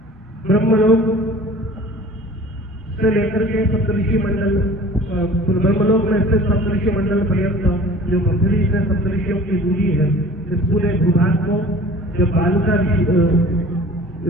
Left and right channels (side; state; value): both; normal; correlation 0.45